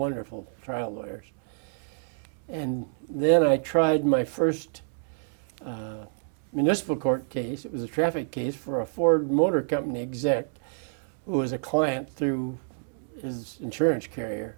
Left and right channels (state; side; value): silent; left; 59 dB below the other